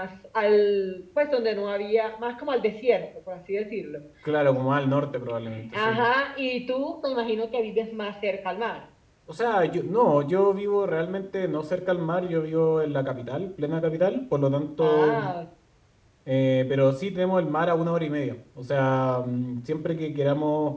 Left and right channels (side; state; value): both; identical; correlation 1.00